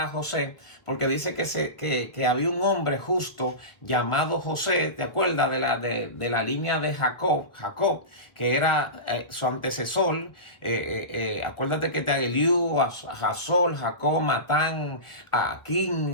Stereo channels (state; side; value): late; right; 1.2 ms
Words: a José, porque dice que había un hombre justo llamado José, ¿te acuerdas de la línea de Jacob, que era su antecesor? Acuérdate que Eliú, Jasol, Jacob, Matán,